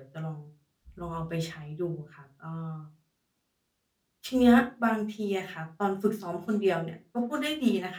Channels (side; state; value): both; identical; correlation 1.00